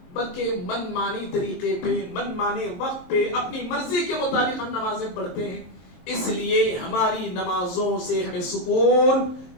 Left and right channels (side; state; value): right; late; 23 ms